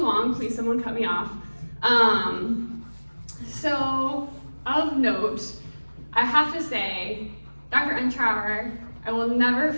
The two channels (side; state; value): both; inverted; correlation -1.00